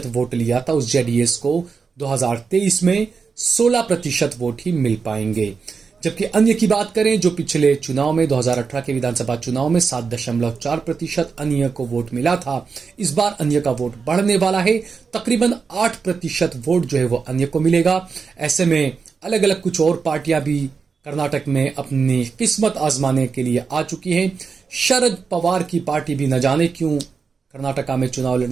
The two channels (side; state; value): left; quieter; 5.3 dB